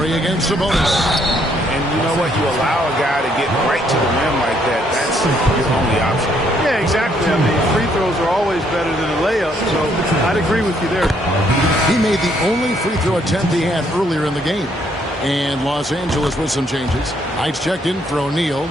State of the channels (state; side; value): normal; both; correlation 0.69